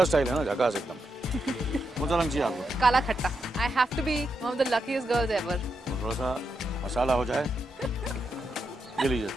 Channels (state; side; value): normal; both; correlation 0.84